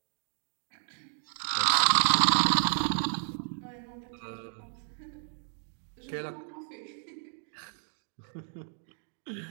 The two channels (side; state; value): left; silent; digital silence